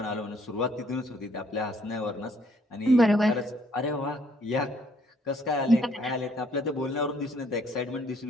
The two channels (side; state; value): both; normal; correlation 0.65